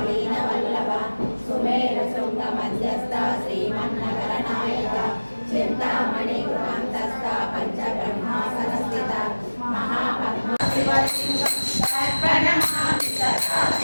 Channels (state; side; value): inverted; both; correlation -1.00